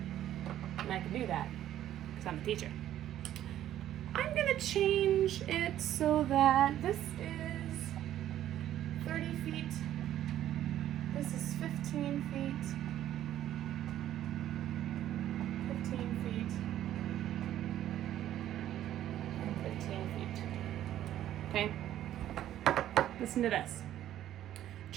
and I can do that because I'm a teacher. I'm going to change it so that this is 30 feet, this is 15 feet, 15 feet, and 15 feet. Okay? Listen to this.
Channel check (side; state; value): left; quieter; 12.2 dB